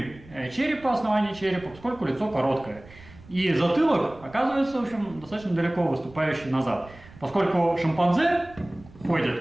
черепа, основания черепа, поскольку лицо короткое. И затылок оказывается, в общем, достаточно далеко выступающий назад. Поскольку шимпанзе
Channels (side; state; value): right; noise; rumble, 21 dB below the sound